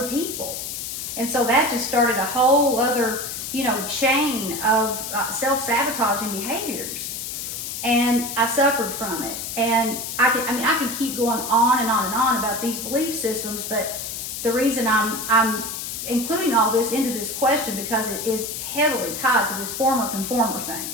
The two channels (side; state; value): left; noise; hiss, 6 dB below the sound